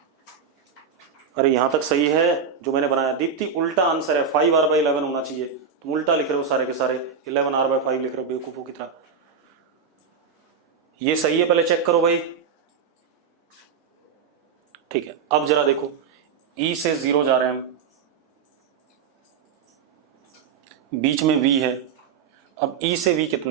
अरे यहां तक सही है जो मैंने बनाया। दीप्ति उल्टा आंसर है, 5r/11 होना चाहिए, तुम उल्टा लिख रहे हो सारे के सारे, 11r/5 लिख रहे हो बेवकूफों की तरह। ये सही है, पहले चेक करो भाई। ठीक है, अब जरा देखो, ई से जीरो जा रहे हैं हम, बीच में वी है। अब ई से वी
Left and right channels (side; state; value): left; quieter; 6.3 dB